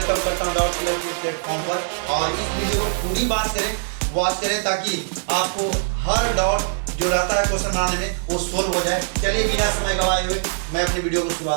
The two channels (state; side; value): silent; left; digital silence